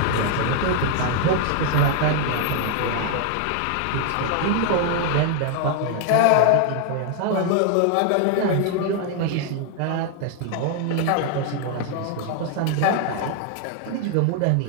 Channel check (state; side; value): different; both; correlation 0.00